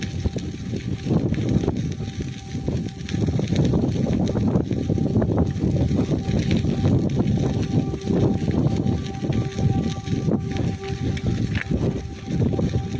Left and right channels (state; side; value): identical; both; correlation 1.00